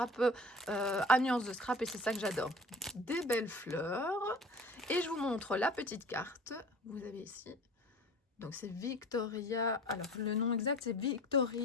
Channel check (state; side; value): normal; both; correlation 0.42